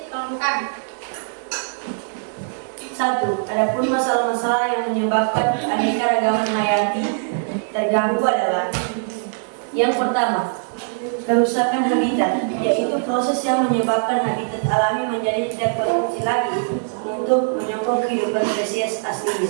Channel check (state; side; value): silent; left; digital silence